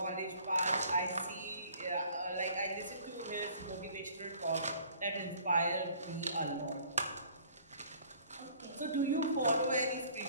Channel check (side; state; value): both; inverted; correlation -0.54